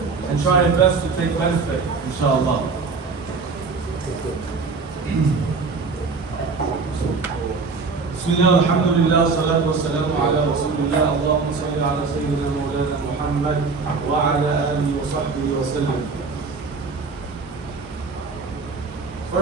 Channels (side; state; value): left; quieter; 4.5 dB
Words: and try your best to take benefit, inshallah. Bismillah, alhamdulillah, salatu wassalamu ala rasulillah, Allahumma salli ala sayyidina mawlana Muhammad wa ala alihi wa sahbihi wa sallam.